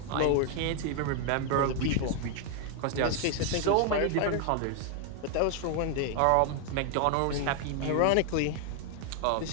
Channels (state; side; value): different; both; correlation 0.00